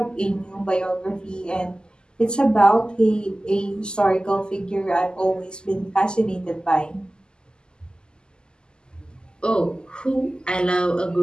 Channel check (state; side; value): late; right; 0.046 ms